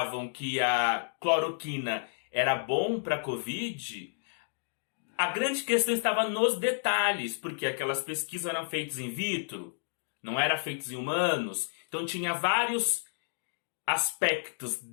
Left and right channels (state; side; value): silent; right; digital silence